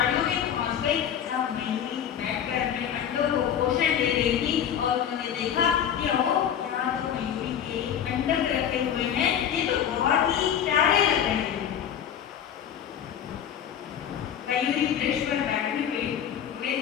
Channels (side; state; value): right; quieter; 9.1 dB